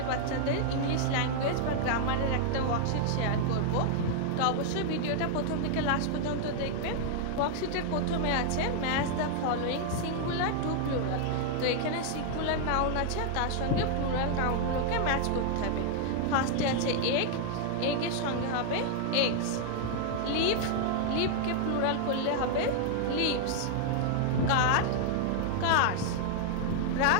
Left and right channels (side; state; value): both; different; correlation -0.01